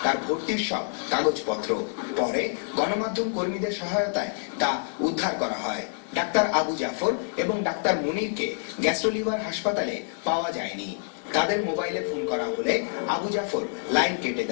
তার ভর্তির সব কাগজপত্র। পরে গণমাধ্যম কর্মীদের সহায়তায় তা উদ্ধার করা হয়। ডাক্তার আবু জাফর এবং ডাক্তার মুনিরকে গ্যাস্ট্রো লিভার হাসপাতালে পাওয়া যায়নি। তাদের মোবাইলে ফোন করা হলে আবু জাফর লাইন কেটে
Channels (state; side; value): silent; right; digital silence